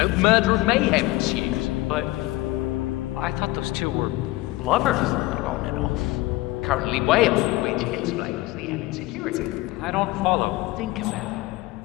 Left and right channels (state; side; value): quieter; right; 19.3 dB